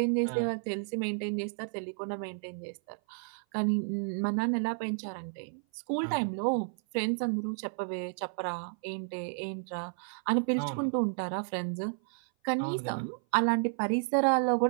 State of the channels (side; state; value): left; silent; 56 dB below the other